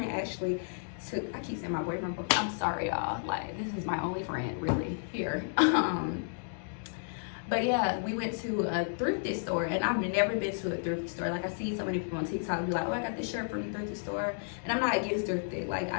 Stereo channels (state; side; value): silent; right; digital silence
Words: actually took, I keep saying my boyfriend, but I'm sorry y'all, like this is my only friend really here. But yeah, we went to a thrifty store and I've never been to a thrifty store. Like I see so many people on TikTok be like, oh, I got this shirt from the thrifty store. And I'm not against thrifty. Like